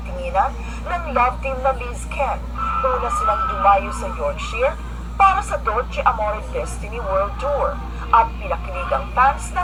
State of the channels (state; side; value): identical; both; correlation 1.00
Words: ng love team na Liz Ken. Una silang dumayo sa Yorkshire para sa Dolce Amore Destiny World Tour at pinakilig ang fans